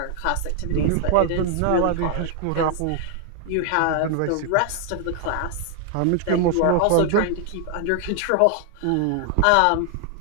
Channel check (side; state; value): both; different; correlation 0.00